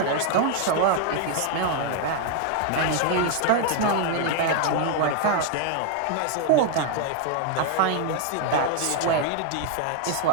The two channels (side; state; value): both; different; correlation 0.00